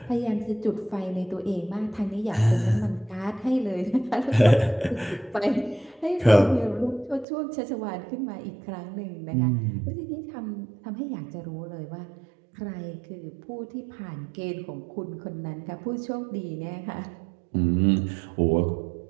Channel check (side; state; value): left; drops out; at 7.2 s